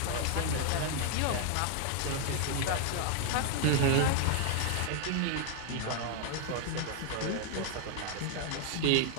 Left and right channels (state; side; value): different; both; correlation 0.00